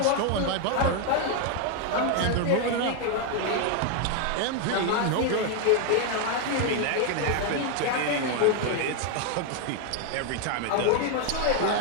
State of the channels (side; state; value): both; different; correlation 0.01